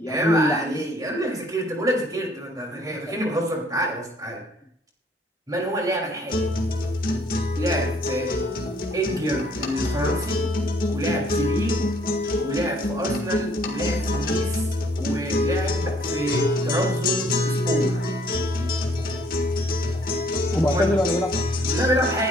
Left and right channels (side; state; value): both; normal; correlation 0.62